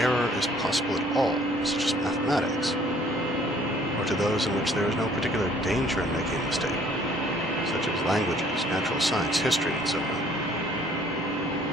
is possible at all, such as mathematics, or to those in which there is no particular danger in making a mistake, such as languages, natural science, history, and so on.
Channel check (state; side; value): normal; both; correlation 0.58